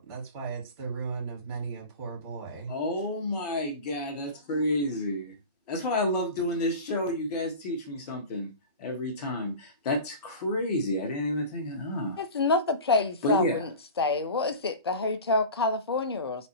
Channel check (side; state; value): both; inverted; correlation -0.33